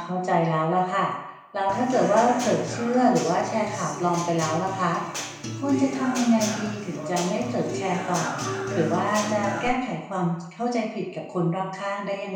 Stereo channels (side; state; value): both; identical; correlation 1.00